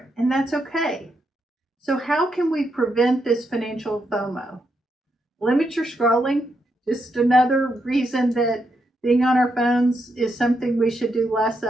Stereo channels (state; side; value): normal; both; correlation 0.81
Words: and that's okay. So how can we prevent this financial FOMO? Limit your scrolling. Just another reason that being on our phones is something we should do less